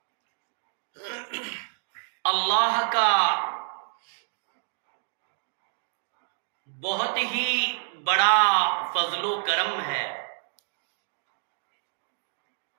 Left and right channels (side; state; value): left; silent; 58 dB below the other